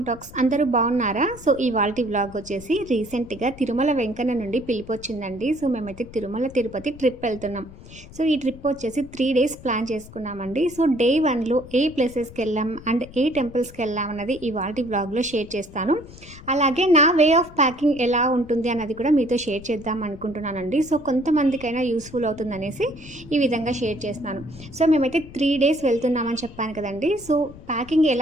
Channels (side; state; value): left; noise; rumble, 18 dB below the sound